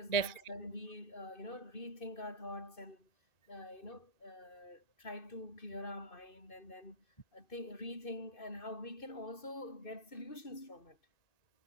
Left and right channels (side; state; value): right; late; 2.6 ms